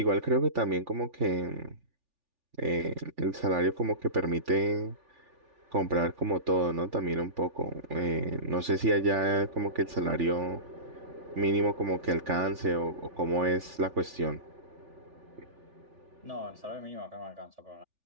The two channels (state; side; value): late; left; 3.4 ms